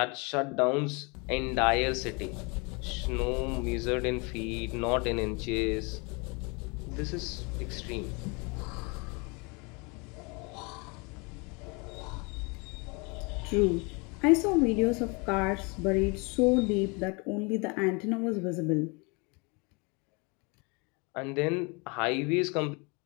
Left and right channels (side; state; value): right; quieter; 30.3 dB